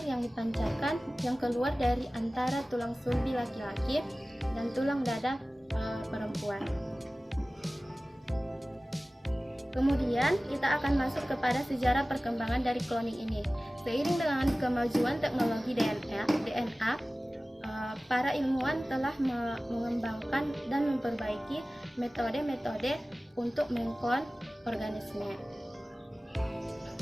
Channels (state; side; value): normal; both; correlation 0.97